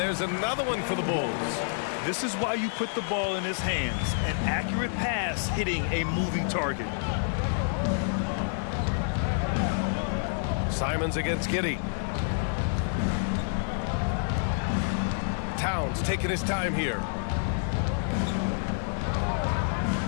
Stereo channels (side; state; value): right; silent; 59 dB below the other